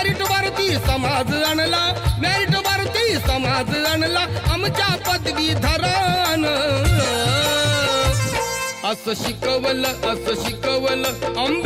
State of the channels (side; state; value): both; identical; correlation 1.00